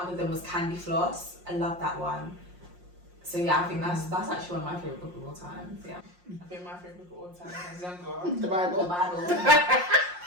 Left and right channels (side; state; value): left; late; 5.6 ms